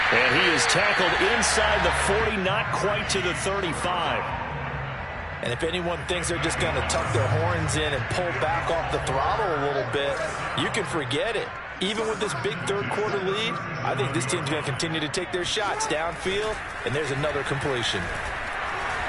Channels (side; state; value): both; identical; correlation 1.00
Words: And he is tackled inside the 40, not quite to the 35. And if anyone thinks they're just going to tuck their horns in and pull back off the throttle a little bit, you can forget it. Even with this big third-quarter lead, I think this team's going to continue to take their shots downfield, and there's another completion.